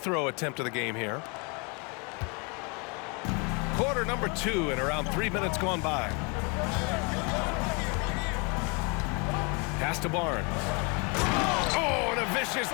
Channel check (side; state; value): right; quieter; 32.3 dB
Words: attempt of the game here. Quarter number 2 and around 3 minutes gone by. Pass to Barnes. Oh, and a vicious